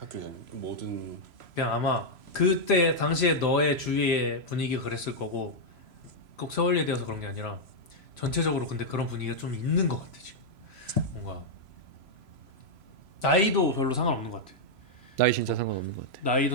전 모든 그냥 아마 그때 당시에 너의 주위의 분위기가 그랬을 거고 꼭 서울예대여서 그런 게 아니라 전체적으로 근데 그런 분위기가 좀 있는 것 같아 지금. 뭔가 나이도 별로 상관없는 것 같아. 나이 진짜 상관없는 것 같아.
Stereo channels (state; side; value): late; left; 3.0 ms